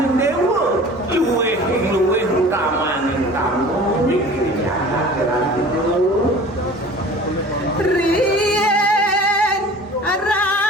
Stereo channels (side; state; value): both; normal; correlation 0.43